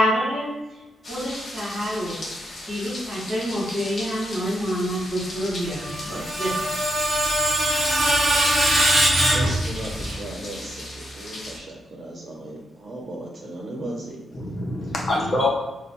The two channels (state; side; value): normal; both; correlation 0.81